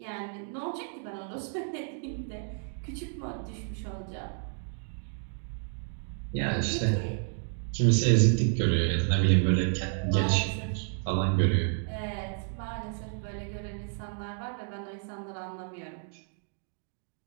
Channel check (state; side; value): silent; left; 57 dB below the other